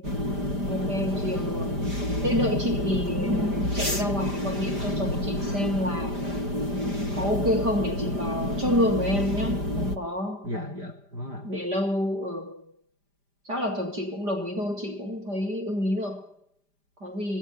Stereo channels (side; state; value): left; late; 5.0 ms